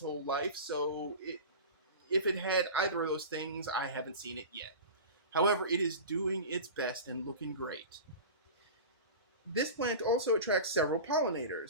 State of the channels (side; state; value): both; inverted; correlation -0.31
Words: whole life, so if it had either of those things, I haven't seen it yet. However, it is doing its best and looking great. This plant also attracts several